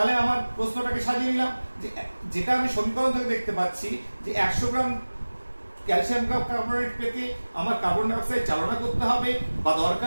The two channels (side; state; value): both; inverted; correlation -1.00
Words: আমার প্রশ্নটাকে সাজিয়ে নিলাম, যে যেটা আমি সমীকরণ থেকে দেখতে পাচ্ছি যে 100 গ্রাম ক্যালসিয়াম কার্বনেট পেতে আমার কার্বন ডাই অক্সাইড চালনা করতে হবে বা